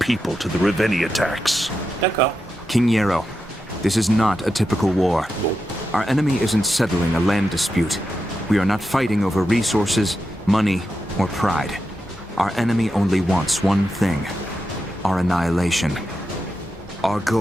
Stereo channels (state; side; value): normal; both; correlation 0.88